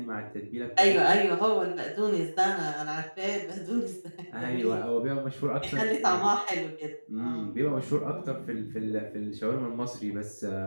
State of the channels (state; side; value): inverted; both; correlation -1.00